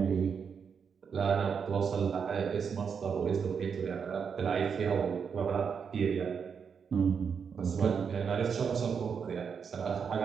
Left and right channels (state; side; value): quieter; left; 6.5 dB